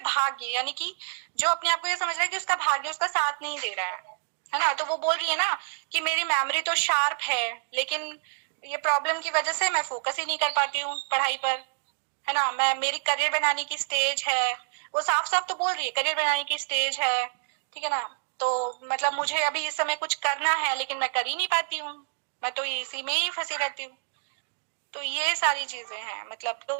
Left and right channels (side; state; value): left; silent; digital silence